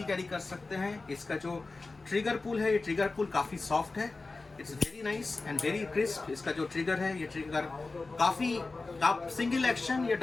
कैरी कर सकते हैं। इसका जो ट्रिगर पुल है, ये ट्रिगर पुल काफ़ी सॉफ्ट है, it's very nice and very crisp. इसका जो ट्रिगर है, ये ट्रिगर काफ़ी, आप सिंगल एक्शन या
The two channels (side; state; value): right; quieter; 3.6 dB